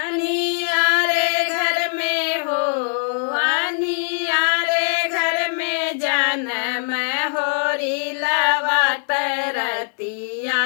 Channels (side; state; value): right; silent; 65 dB below the other